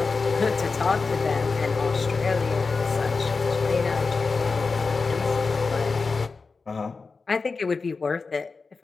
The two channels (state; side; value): quieter; right; 4.4 dB